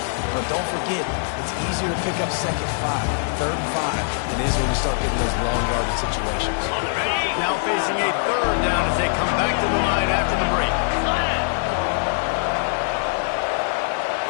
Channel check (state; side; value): silent; right; digital silence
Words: But don't forget, it's easier to pick up 2nd 5, 3rd and 5 than it is when you start getting those long yardage situations. Now facing a 3rd down as they come back to the line after the break.